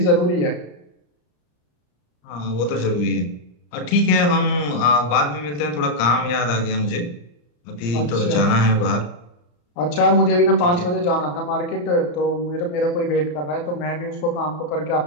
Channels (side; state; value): right; late; 34 ms